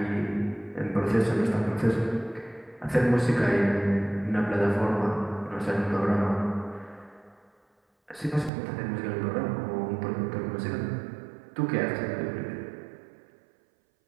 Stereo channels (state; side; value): drops out; left; at 8.5 s